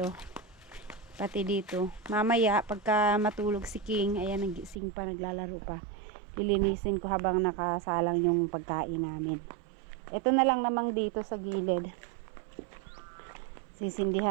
Pati dito. Mamaya pagka matulog si King, ayan, nagising pa, naglalaro pa. Lilinisin ko habang nakasalang yung pagkain namin. Ito na lang namang dito sa gilid.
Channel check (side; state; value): left; drops out; at 4.8 s